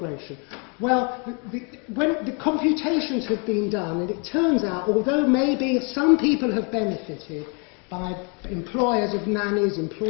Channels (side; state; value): right; quieter; 35.4 dB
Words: Well, when the computations have been done, and it turns out, although maybe some people have benefited by employers of nannies,